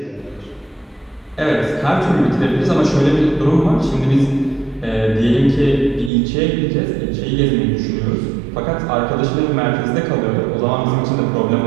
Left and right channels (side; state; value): left; drops out; at 6.1 s